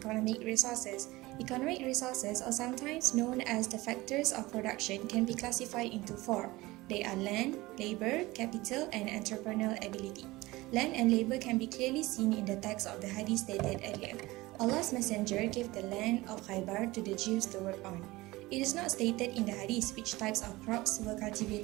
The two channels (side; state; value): left; quieter; 20.1 dB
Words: resources. Economic resources, or sometimes known as the factors of production, can be classified into four. They are land, labor, capital, and entrepreneurial ability. Land and labor can be clearly seen in the text of the hadith stated earlier. Allah's Messenger gave the land of Khaybar to the Jews to work on. It is not stated in the hadith which types of crops were